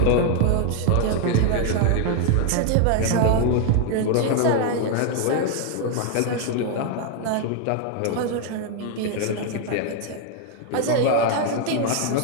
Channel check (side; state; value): both; different; correlation 0.00